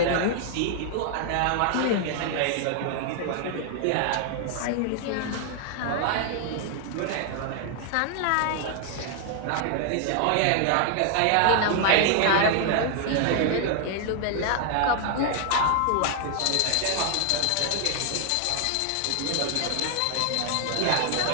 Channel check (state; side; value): different; both; correlation 0.00